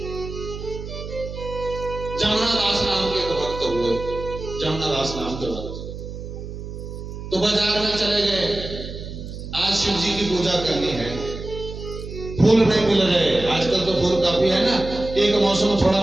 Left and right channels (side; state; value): right; noise; hum, 10 dB below the sound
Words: जमुनादास नाम के एक भक्त हुए, जमुनादास नाम के भक्त तो बाजार में चले गए, आज शिव जी की पूजा करनी है, फूल नहीं मिल रहे। आजकल तो फूल काफी है ना, एक मौसम थोड़ा